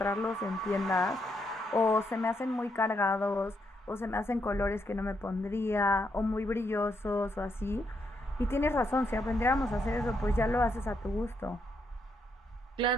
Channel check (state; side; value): normal; both; correlation 0.78